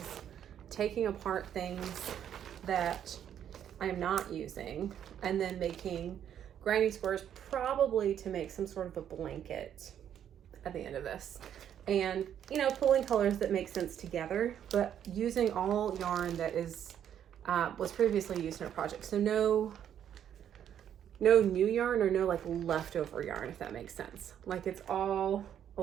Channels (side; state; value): left; quieter; 9.6 dB